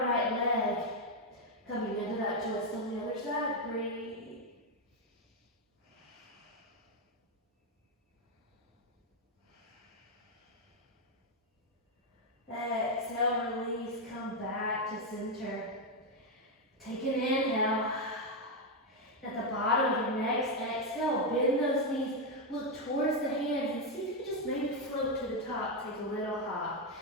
right leg. Coming into that twist on the other side. Breathe. Exhale, release, come back to center. Take an inhale. At the bottom of your next exhale, bend those knees, look towards the hands, and see if you can just maybe float to the top. Take a little hop.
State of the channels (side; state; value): both; normal; correlation 0.03